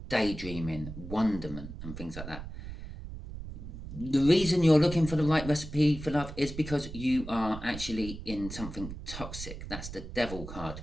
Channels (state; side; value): noise; right; rumble, 10 dB below the sound